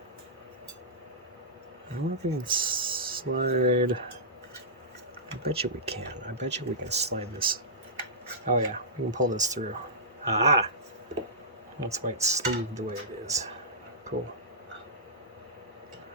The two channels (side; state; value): both; normal; correlation -0.16